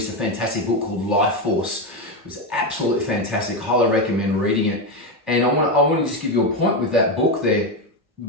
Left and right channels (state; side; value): normal; both; correlation 0.11